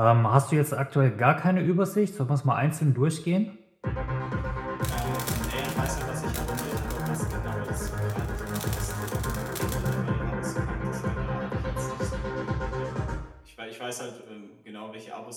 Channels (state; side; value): identical; both; correlation 1.00